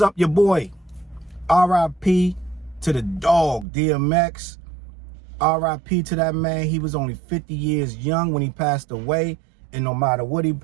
your boy? R.I.P. to the dog, DMX. R.I.P. to that man. He was only 50 years young when he passed away. And no matter what he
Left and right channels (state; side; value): drops out; left; at 3.7 s